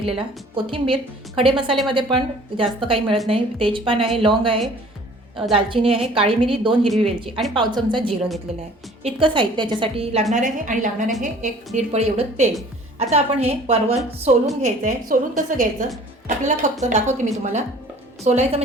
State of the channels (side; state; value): both; normal; correlation 0.50